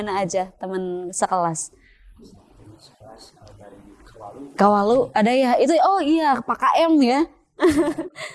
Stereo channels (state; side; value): identical; both; correlation 1.00